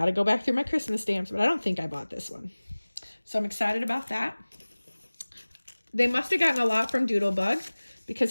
to go back through my Christmas stamps, but I don't think I bought this one. So I'm excited about that. They must have gotten a lot from Doodlebug, because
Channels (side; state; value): both; inverted; correlation -1.00